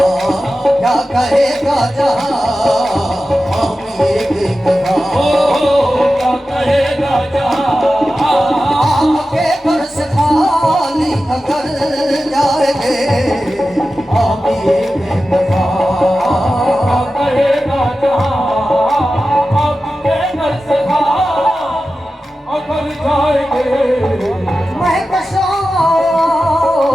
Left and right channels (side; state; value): both; normal; correlation 0.93